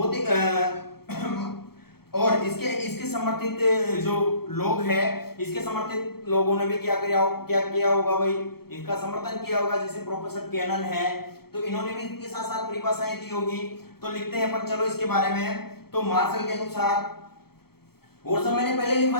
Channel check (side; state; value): right; late; 0.96 ms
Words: और इसके समर्थित जो लोग हैं, इसके समर्थित लोगों ने भी क्या किया होगा भाई, इसका समर्थन किया होगा। जैसे प्रोफेसर कैनन है, तो इन्होंने भी इसके साथ साथ परिभाषाएं दी होगी। तो लिखते हैं अपन चलो इसके बारे में। तो मार्शल के अनुसार, और सब मैंने पहले